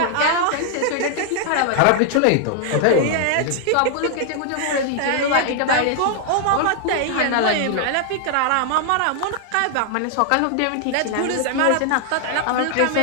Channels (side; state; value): both; different; correlation 0.00